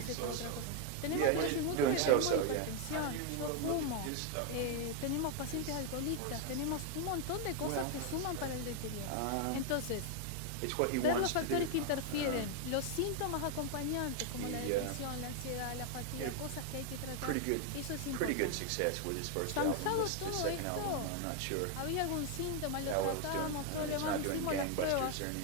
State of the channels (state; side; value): different; both; correlation 0.01